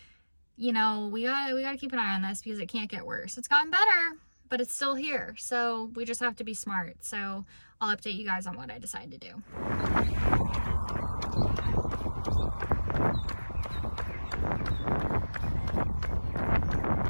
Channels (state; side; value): inverted; both; correlation -1.00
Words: you know, we gotta keep an eye on this because it can't get worse. It's gotten better, but it's still here. So we just have to be smart. So I'll update you guys on what I decide to do.